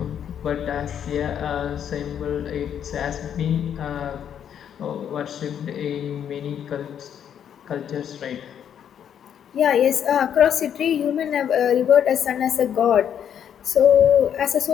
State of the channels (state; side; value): quieter; right; 9.0 dB